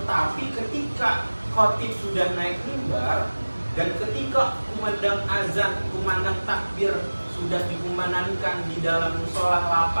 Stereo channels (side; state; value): both; inverted; correlation -1.00